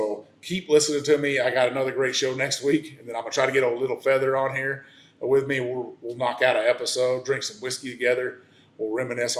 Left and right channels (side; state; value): both; identical; correlation 1.00